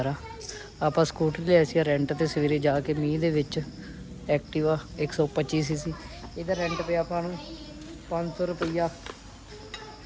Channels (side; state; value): both; identical; correlation 1.00